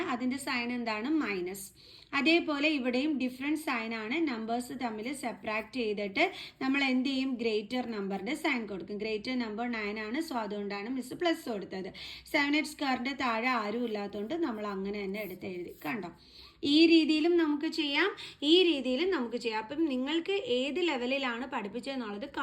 അതിൻ്റെ സൈൻ എന്താണ്, മൈനസ്. അതേപോലെ ഇവിടെയും ഡിഫറെൻറ്റ് സൈൻ ആണ്, നമ്പേഴ്സ് തമ്മിൽ സെപ്പറേറ്റ് ചെയ്തിട്ട് നമ്മൾ എന്ത് ചെയ്യും, ഗ്രേറ്റർ നമ്പറിൻ്റെ സൈൻ കൊടുക്കും. ഗ്രേറ്റർ നമ്പർ 9 ആണ്, സോ അതുകൊണ്ടാണ് മിസ് പ്ലസ് കൊടുത്തത്. 7x² താഴെ ആരും ഇല്ലാത്തതുകൊണ്ട് നമ്മൾ അങ്ങനെ തന്നെ എടുത്ത് എഴുതി. കണ്ടോ, ഈ രീതിയിലും നമുക്ക് ചെയ്യാം, ഈ രീതിയിലും നമുക്ക് ചെയ്യാം. അപ്പം നിങ്ങൾക്ക് ഏത് ലെവലിലാണ് പഠിപ്പിച്ചതെന്നുള്ളത്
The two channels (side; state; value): both; identical; correlation 1.00